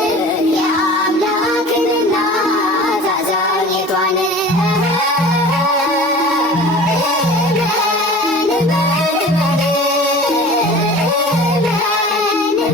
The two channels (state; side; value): normal; both; correlation 0.40